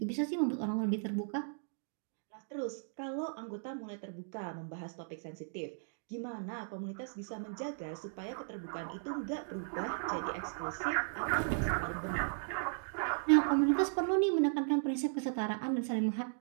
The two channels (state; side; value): silent; left; digital silence